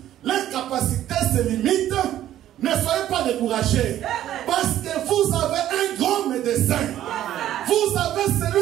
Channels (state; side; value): quieter; left; 12.4 dB